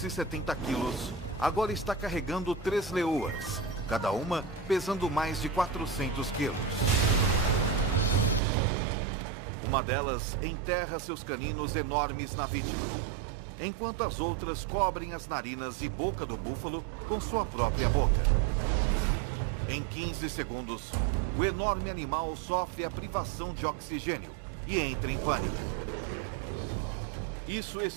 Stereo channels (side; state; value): left; drops out; at 8.4 s